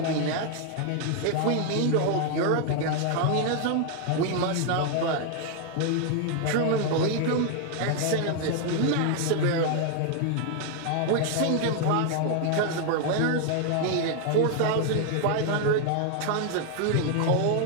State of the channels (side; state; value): both; different; correlation 0.00